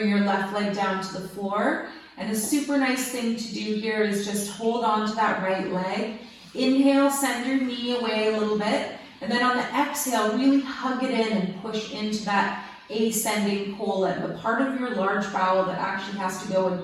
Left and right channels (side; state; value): both; identical; correlation 1.00